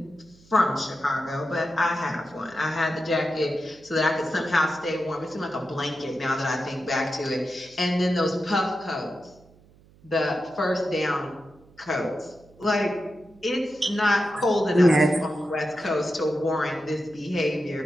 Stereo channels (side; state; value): right; noise; hum, 27 dB below the sound